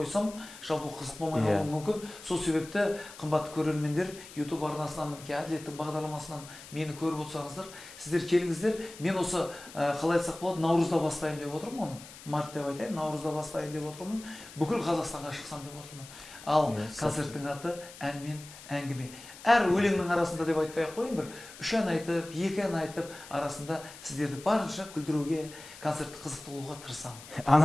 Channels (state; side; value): noise; left; hiss, 17 dB below the sound